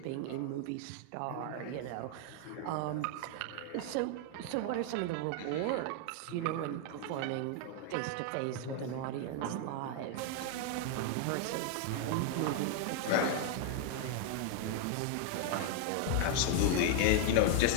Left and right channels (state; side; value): different; both; correlation 0.00